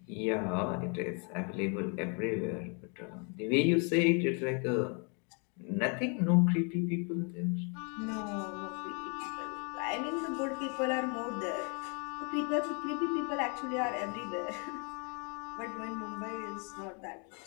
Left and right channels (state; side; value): quieter; right; 36.6 dB